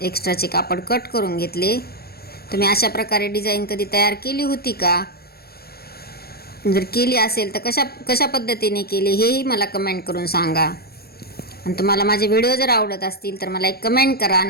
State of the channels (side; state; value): right; late; 0.45 ms